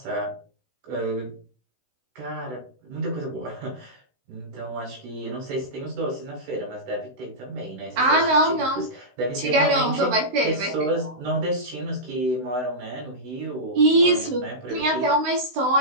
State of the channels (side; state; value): left; late; 16 ms